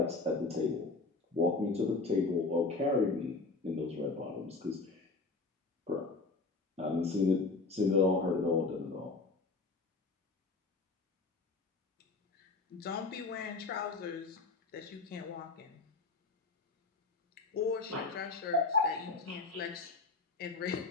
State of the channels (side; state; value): right; quieter; 3.8 dB